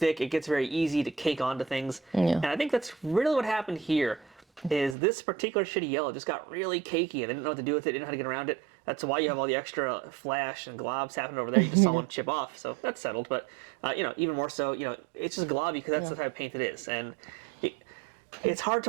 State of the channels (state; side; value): drops out; left; at 5.0 s